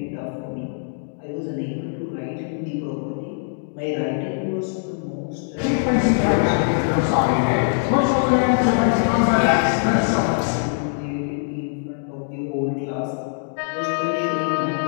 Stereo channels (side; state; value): right; silent; digital silence